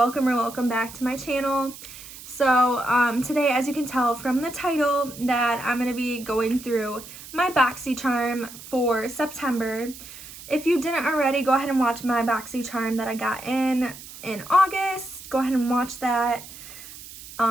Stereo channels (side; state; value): right; noise; hiss, 15 dB below the sound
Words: back to my channel. So today, as you can tell from the title, that I'm going to be going through my Boxycharm for September. If you didn't already, go ahead and watch my Boxycharm that I got in August. Go ahead and watch that.